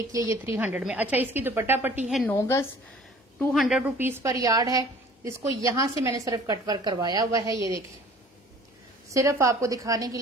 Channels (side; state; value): both; normal; correlation 0.49